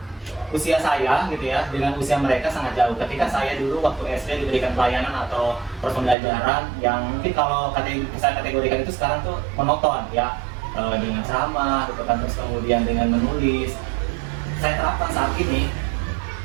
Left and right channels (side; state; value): left; drops out; at 6.2 s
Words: usia saya gitu ya dengan usia mereka sangat jauh. Ketika saya dulu waktu SD diberikan pelayanan atau pembelajaran yang mungkin kalau saya kategorikan itu sekarang tuh monoton ya, dengan ceramah gitu kan, terus kemudian dengan menulis. Saya terapkan saat ini